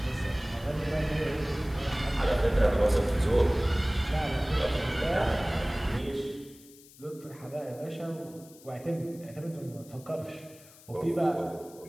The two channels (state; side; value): noise; left; hiss, 23 dB below the sound